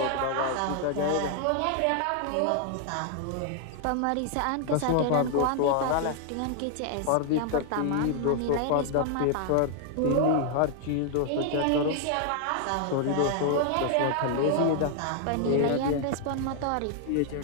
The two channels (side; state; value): both; different; correlation 0.00